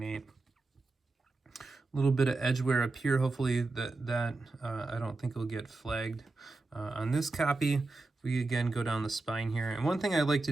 A little bit of edge wear up here. Hopefully that I don't think will get flagged on this copy. We again go down the spine here, and one thing I like to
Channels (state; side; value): quieter; left; 3.3 dB